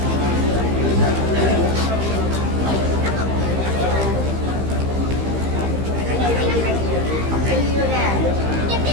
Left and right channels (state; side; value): late; left; 15 ms